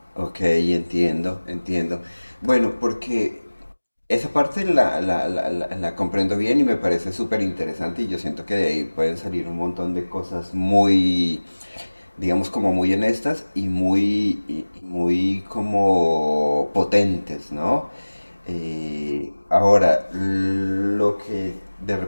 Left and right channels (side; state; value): both; inverted; correlation -1.00